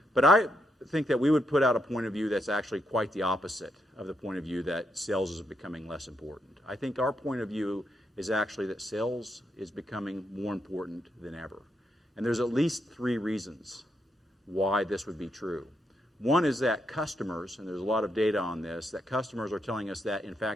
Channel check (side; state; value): both; normal; correlation 0.80